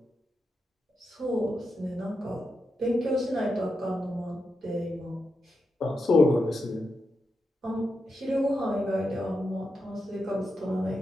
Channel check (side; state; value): both; normal; correlation 0.87